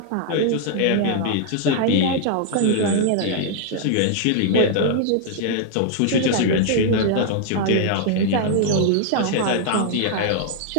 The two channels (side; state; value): both; different; correlation 0.00